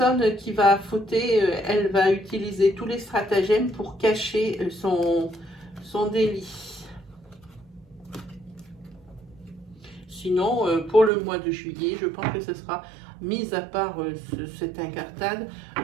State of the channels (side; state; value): left; drops out; at 11.1 s